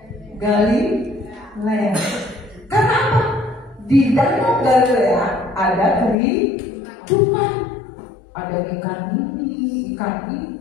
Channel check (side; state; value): right; drops out; at 6.2 s